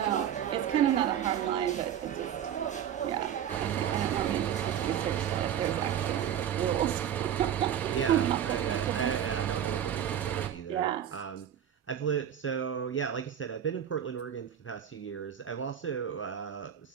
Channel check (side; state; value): left; quieter; 9.6 dB